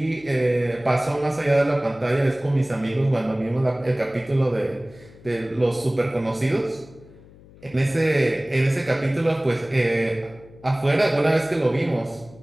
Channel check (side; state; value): left; noise; hum, 23 dB below the sound